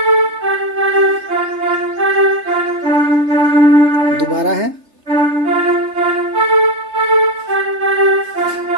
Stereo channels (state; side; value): late; left; 3.3 ms